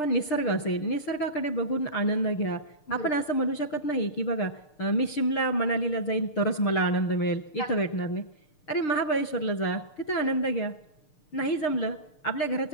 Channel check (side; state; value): right; late; 6.6 ms